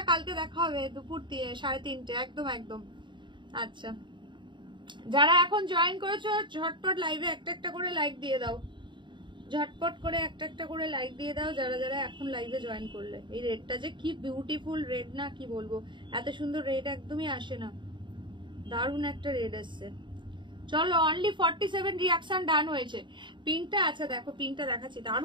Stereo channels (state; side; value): late; left; 0.23 ms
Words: কালকে দেখা হবে দুপুর 3:30, একদম একদম। আচ্ছা যারা এখন জয়েন করেছো ঝটপট লাইভে একটা করে লাইক দিয়ে দাও, ঝটপট করে একটা করে লাইক দিয়ে দাও যারা যারা এখন লাইভে জয়েন করলে। এই রেডটা যে কি বিউটিফুল রেড না, কি বলবো, এত সুন্দর রেড একদমই আসে না, দারুণ একটা রেড আসছে। চলো অনলি 47 রিয়াকশন ডান হয়েছে। পিঙ্কটা, আচ্ছা দেখো পিঙ্কটা দেখাচ্ছি,